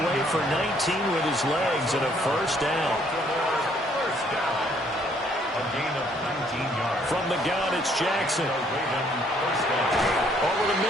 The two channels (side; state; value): both; normal; correlation 0.65